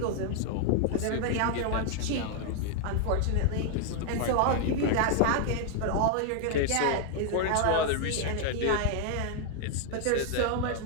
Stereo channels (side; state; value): both; different; correlation 0.00